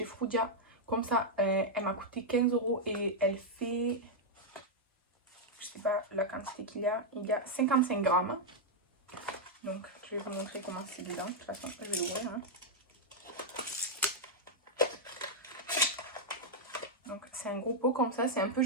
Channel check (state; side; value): normal; both; correlation -0.02